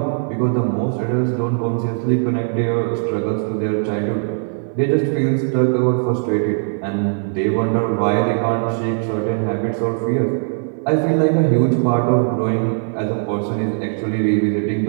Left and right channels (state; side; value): silent; left; 58 dB below the other